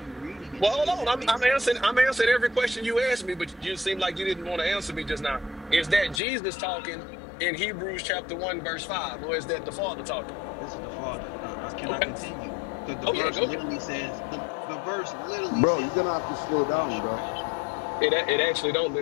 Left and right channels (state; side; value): drops out; right; at 6.2 s